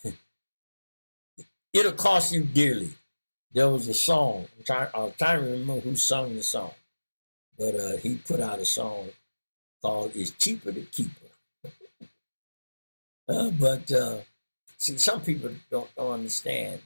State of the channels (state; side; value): inverted; both; correlation -1.00